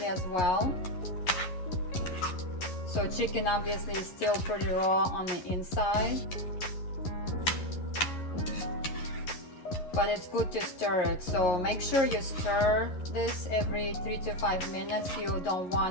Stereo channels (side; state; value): right; late; 11 ms